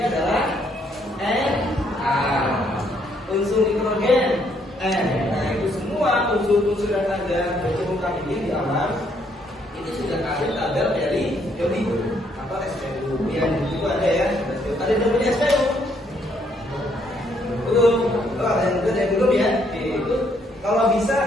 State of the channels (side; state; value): both; normal; correlation 0.70